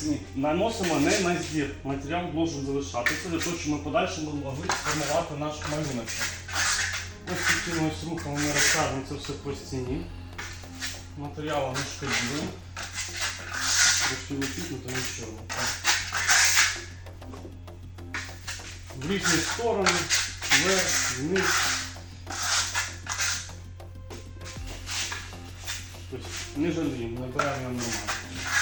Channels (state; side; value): identical; both; correlation 1.00